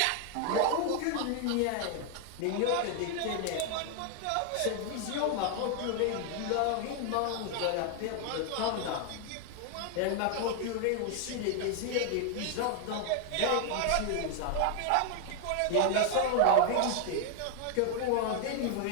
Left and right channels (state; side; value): different; both; correlation 0.00